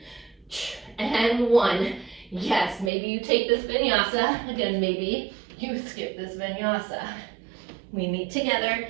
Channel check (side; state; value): left; drops out; at 2.9 s